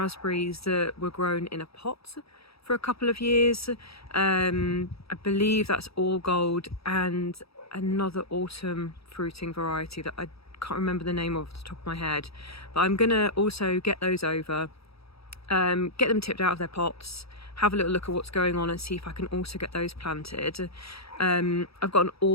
that were grown in a pot for a couple of years. I believe that's All Gold and another autumn fruiting variety that I can't remember the name off the top of my head, but I'm gonna also get those over, get them tipped out of their pots, have a little look at what's going on and see if I can also get those planted. I've got an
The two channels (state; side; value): late; right; 0.77 ms